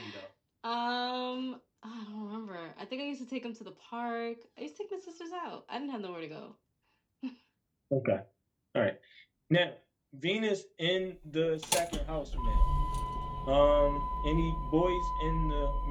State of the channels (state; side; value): identical; both; correlation 1.00